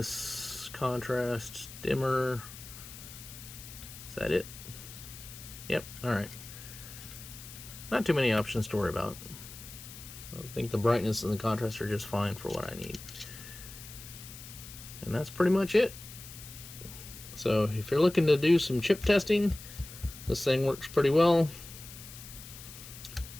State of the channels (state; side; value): noise; left; hiss, 14 dB below the sound